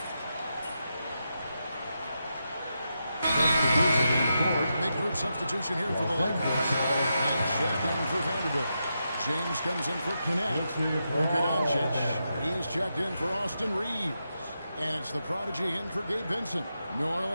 substitution here for the Lakers. And check in for Vanderbilt. James comes in for Connect. Luka Doncic. He's checked in for Austin Reeves. And it's the prodigy in for Gabe Vincent. New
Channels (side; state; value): both; inverted; correlation -0.86